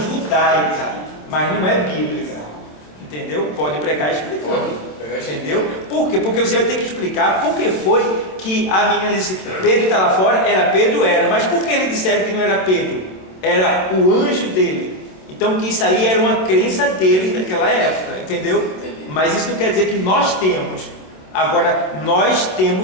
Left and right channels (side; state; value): right; late; 26 ms